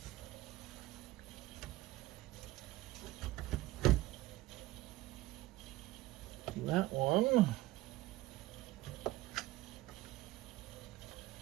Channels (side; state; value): left; quieter; 17.4 dB